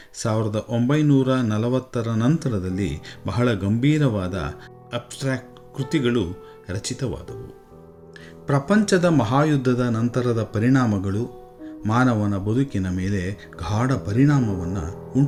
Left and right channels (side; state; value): both; identical; correlation 1.00